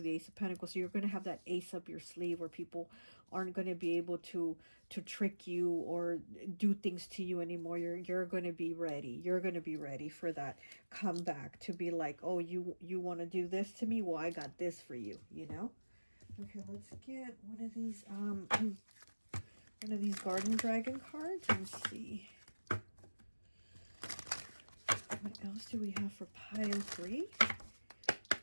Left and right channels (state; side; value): inverted; both; correlation -1.00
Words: the Ace of Pentacles, so you're going to have that ace up your sleeve where people aren't going to be able to trick you or do things to you anymore. You're going to be ready. You're going to be ready for that comeback, to be like, oh, you want to do this to me? Well, I got this for you, you know? Okay, let's get one of these Garden Dragon cards and see what else do we have for pile 3